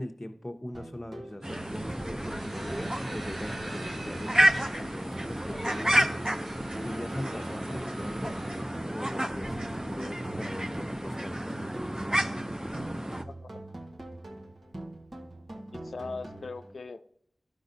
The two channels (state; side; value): normal; both; correlation 0.97